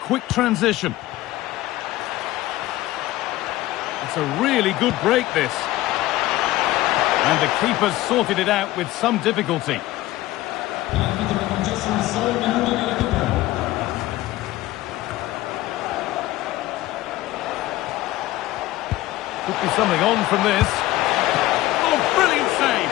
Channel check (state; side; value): quieter; right; 16.7 dB